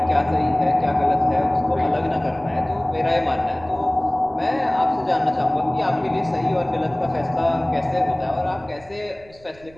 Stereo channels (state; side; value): noise; right; rumble, 25 dB below the sound